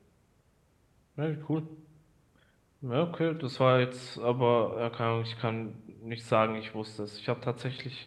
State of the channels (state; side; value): identical; both; correlation 1.00